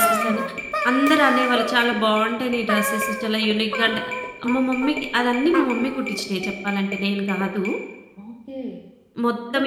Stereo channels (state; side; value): identical; both; correlation 1.00